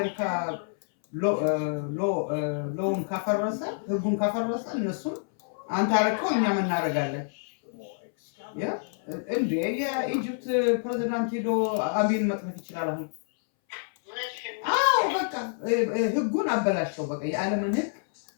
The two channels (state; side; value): silent; right; 60 dB below the other